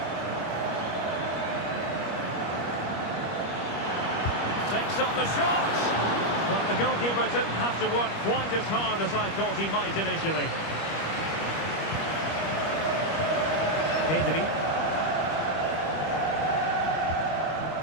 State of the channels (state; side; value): late; right; 25 ms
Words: Takes on the shot. But the goalkeeper didn't have to work quite as hard as I thought he might initially. Pedri.